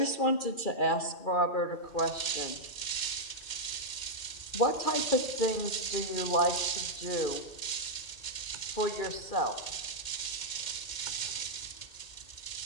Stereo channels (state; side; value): late; right; 2.1 ms